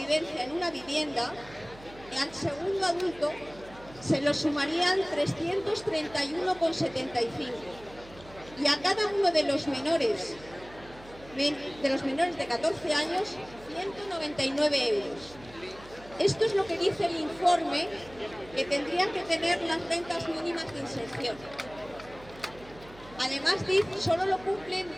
en una vivienda, al segundo adulto se lo sumarían 331,75 y a cada uno de los menores de 14 años 199 euros. Esto es lo que dice el informe que tendrían que tener las rentas mínimas de inserción. Además, solo lo cumplen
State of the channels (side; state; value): right; noise; hum, 20 dB below the sound